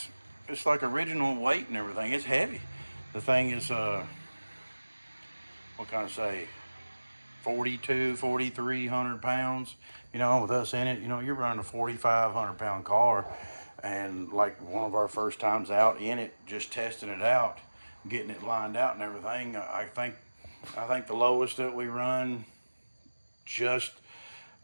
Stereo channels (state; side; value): inverted; both; correlation -1.00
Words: it's like original weight and everything. It's heavy. The thing is what can I say, 4,300 pounds. You know, with us in it, you know, you're running a 4,500 pound car, and like one of our first times out in it, just testing it out, getting it lined out and everything. I think the lowest that we run, just